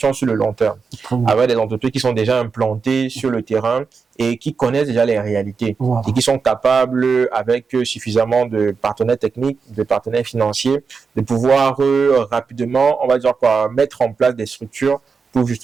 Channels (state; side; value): quieter; left; 5.2 dB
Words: sur le long terme, avec des entreprises qui sont déjà implantées sur le terrain et qui connaissent déjà les réalités et qui sont capables, avec suffisamment de partenaires techniques, de partenaires financiers, de pouvoir rapidement, on va dire quoi, mettre en place des structures pour